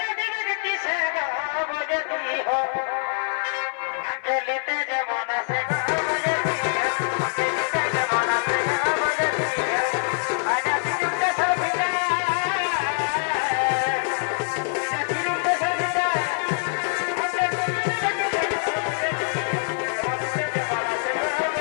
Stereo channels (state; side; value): silent; right; 57 dB below the other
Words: দিবে কিসে বলে দিও আকেলিতে যেমন আছে